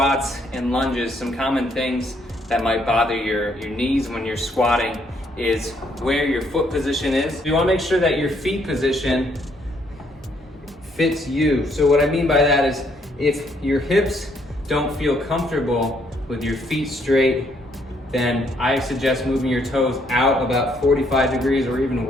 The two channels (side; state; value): both; normal; correlation 0.70